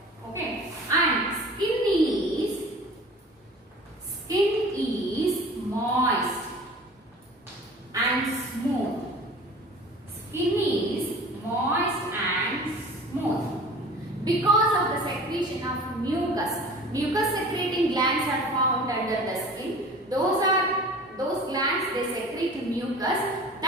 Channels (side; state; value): both; normal; correlation 0.42